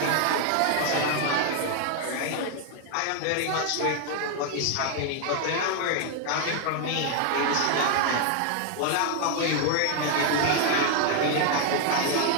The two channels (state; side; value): different; both; correlation 0.00